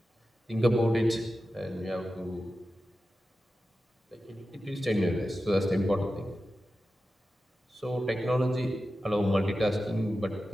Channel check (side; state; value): both; normal; correlation 0.93